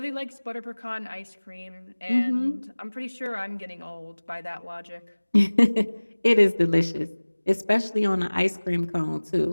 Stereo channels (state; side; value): inverted; both; correlation -1.00